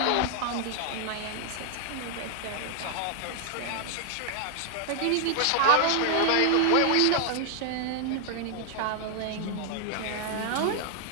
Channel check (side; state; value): both; different; correlation 0.00